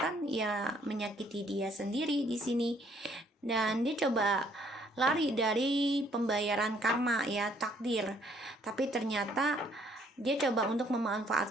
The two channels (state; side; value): normal; both; correlation 0.64